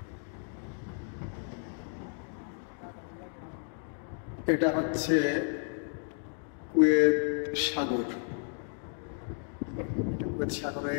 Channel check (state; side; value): silent; right; 56 dB below the other